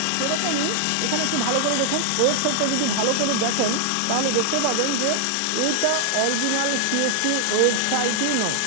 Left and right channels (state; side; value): different; both; correlation 0.00